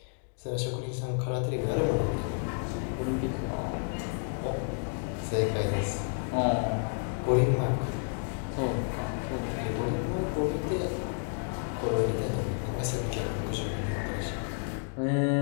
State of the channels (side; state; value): right; silent; 57 dB below the other